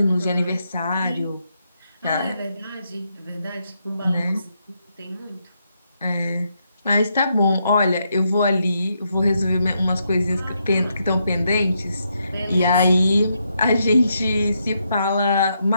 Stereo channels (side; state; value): both; inverted; correlation -0.79